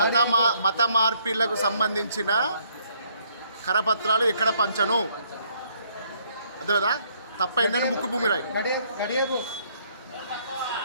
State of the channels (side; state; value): both; inverted; correlation -0.67